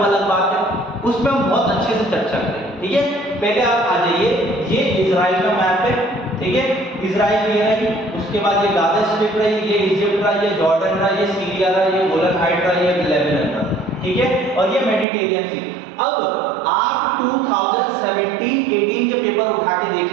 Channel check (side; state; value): left; drops out; at 15.1 s